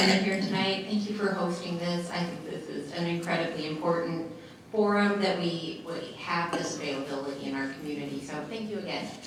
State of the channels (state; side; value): identical; both; correlation 1.00